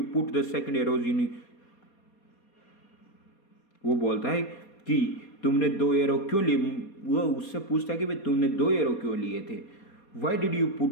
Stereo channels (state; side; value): late; right; 4.2 ms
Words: put the second arrows in, वो बोलता है कि तुमने 2 एरो क्यों लिए, वो उससे पूछता है कि भाई तुमने 2 एरो क्यों लिए थे। Why did you